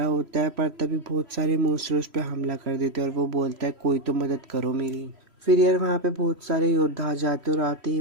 होता है, पर तभी बहुत सारे मॉन्स्टर उस पर हमला कर देते हैं और वो बोलता है कोई तो मदद करो मेरी। फिर यार वहाँ पे बहुत सारे योद्धा आ जाते और आते ही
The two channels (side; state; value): left; late; 3.1 ms